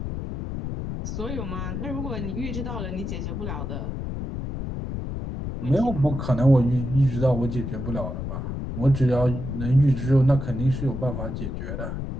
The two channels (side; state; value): left; noise; rumble, 5 dB below the sound